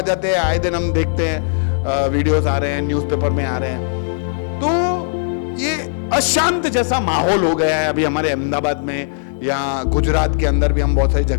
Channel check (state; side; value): silent; right; digital silence